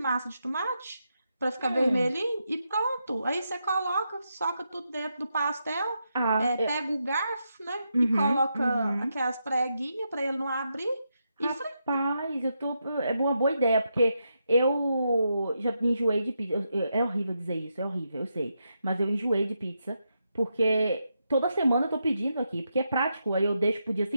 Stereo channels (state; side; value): inverted; both; correlation -0.84